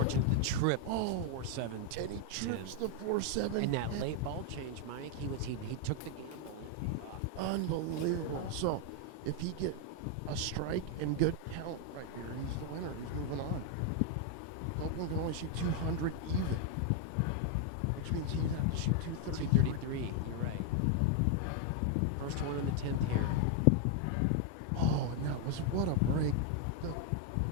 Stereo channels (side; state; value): both; different; correlation 0.00